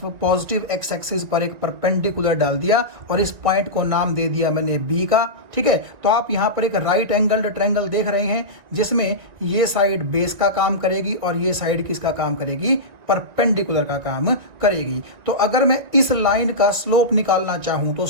पॉजिटिव एक्स एक्सिस पर एक परपेंडिकुलर डाल दिया और इस पॉइंट को नाम दे दिया मैंने B का। ठीक है, तो आप यहाँ पर एक राइट एंगल्ड ट्रायंगल देख रहे हैं, जिसमें ये साइड बेस का काम करेगी और ये साइड किसका काम करेगी, परपेंडिकुलर का काम करेगी। तो अगर मैं इस लाइन का स्लोप निकालना चाहूं तो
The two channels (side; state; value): left; late; 1.9 ms